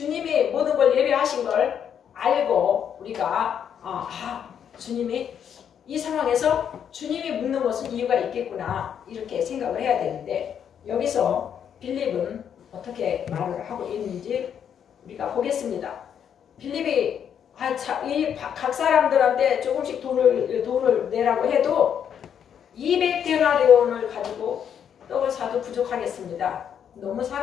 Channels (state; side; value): quieter; right; 8.5 dB